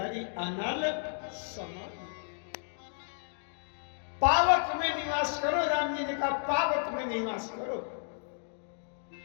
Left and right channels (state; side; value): silent; right; digital silence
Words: अनल समाधि। पावक में निवास करो, राम जी ने कहा पावक में निवास करो।